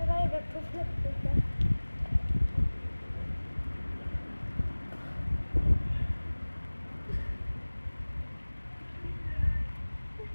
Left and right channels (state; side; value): inverted; both; correlation -1.00